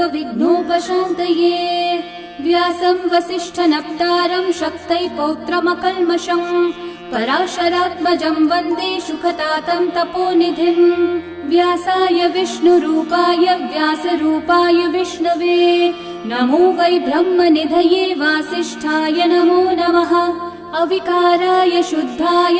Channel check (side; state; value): both; identical; correlation 1.00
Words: व्यासं वसिष्ठनप्तारं शक्तै पौत्रमकल्मषं पराशरात्मजं वन्दे शुकतातं तपोनिधिम्। व्यासाय विष्णुरूपाय व्यासरूपाय विष्णवे नमो वै ब्रह्मनिधये वासिष्ठाय नमो नमः। अविकाराय शुद्धाय